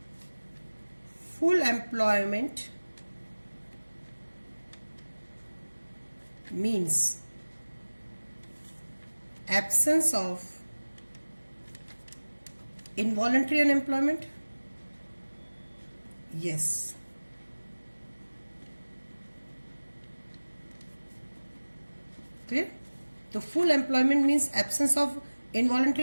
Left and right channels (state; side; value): inverted; both; correlation -1.00